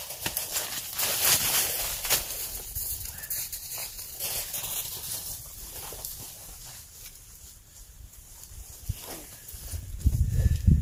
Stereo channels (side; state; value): both; identical; correlation 1.00